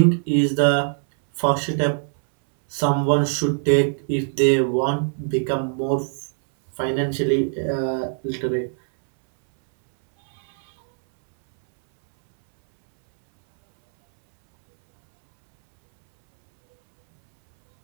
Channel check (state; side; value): silent; left; 65 dB below the other